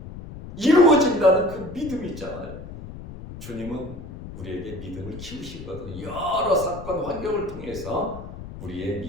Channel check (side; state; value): left; noise; rumble, 12 dB below the sound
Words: 이루어진다는 그 믿음이 있잖아요. 주님은 우리에게 믿음을 키우시거든요. 여러 사건 환경을 통해서 우리의